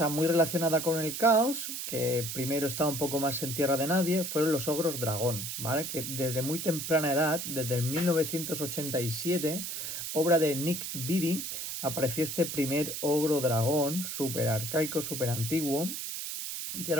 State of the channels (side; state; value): right; noise; hiss, 5 dB below the sound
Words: muy relacionada con el caos, que primero estaba un poco más en tierra de nadie, fueron los ogros dragón, ¿vale? Que desde muy temprana edad, desde el 1987, obra de Nick Beatty, apareció este primer ogro dragón, súper arcaico, súper antiguo, y